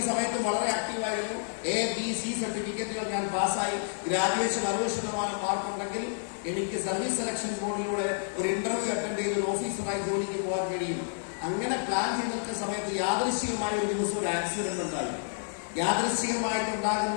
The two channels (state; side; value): silent; right; digital silence